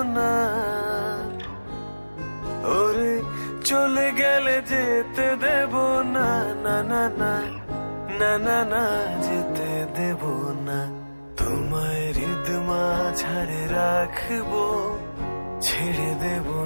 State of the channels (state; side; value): inverted; both; correlation -1.00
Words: না, ওরে চলে গেলে যেতে দেব না। না না না না না না, যেতে দেব না, তোমায় হৃদ মাঝারে রাখবো, ছেড়ে দেব